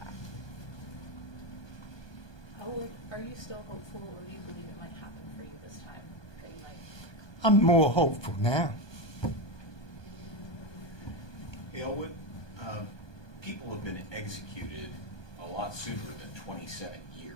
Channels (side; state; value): right; late; 1.2 ms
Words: Are you still hopeful, or do you believe it might happen for you this time? That you might... I'm more hopeful now. Elwood, people have been executed a lot sooner than 27